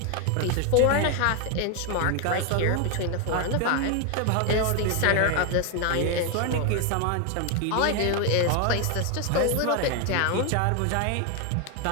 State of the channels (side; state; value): both; different; correlation 0.01